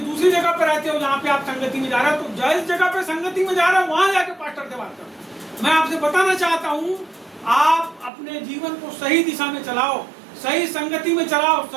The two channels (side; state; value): left; drops out; at 8.1 s